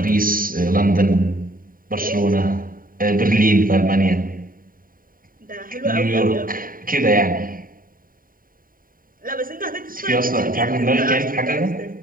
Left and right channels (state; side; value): late; left; 0.41 ms